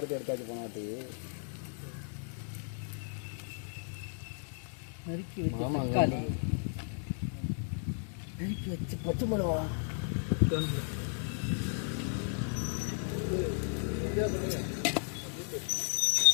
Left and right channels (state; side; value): silent; right; 55 dB below the other